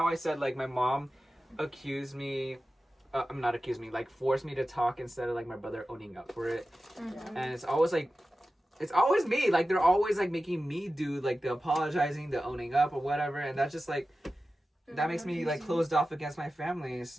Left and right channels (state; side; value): normal; both; correlation 0.94